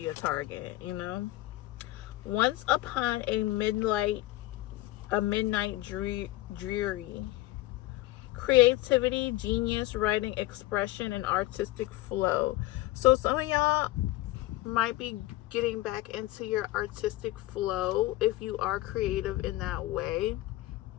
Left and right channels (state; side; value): quieter; right; 17.4 dB